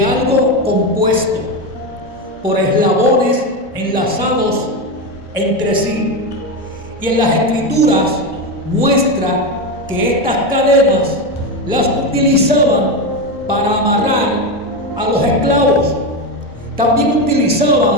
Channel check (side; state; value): both; normal; correlation 0.14